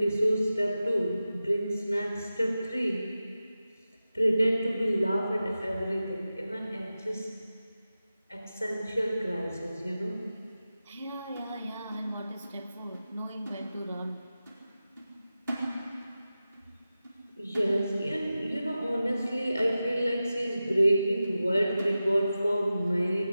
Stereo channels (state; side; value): inverted; both; correlation -0.93